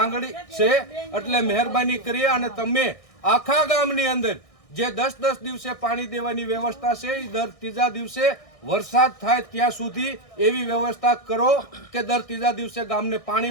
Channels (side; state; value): right; late; 1.6 ms